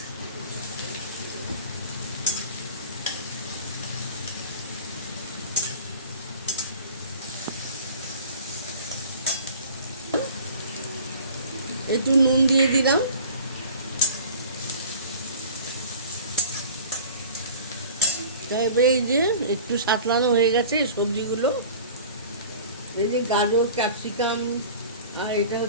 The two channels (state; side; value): inverted; both; correlation -0.42